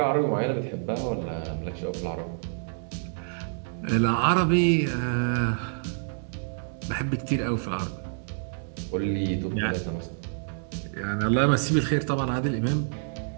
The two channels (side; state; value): left; silent; digital silence